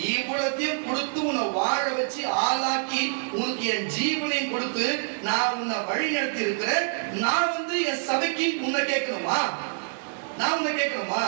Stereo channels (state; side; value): silent; left; digital silence